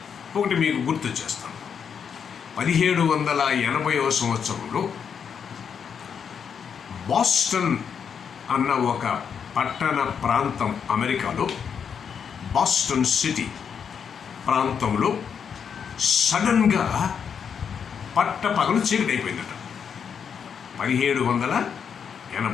ఒకటి మీకు గుర్తు చేస్తాను. 1780వ సంవత్సరంలో బాస్టన్ అన్న ఒక పట్టణ ప్రాంతం, అమెరికాలో బాస్టన్ సిటీ ప్రాంతంలో సడన్గా పట్ట పగలు చీకటి అయిపోయిందట.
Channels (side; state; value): right; quieter; 7.1 dB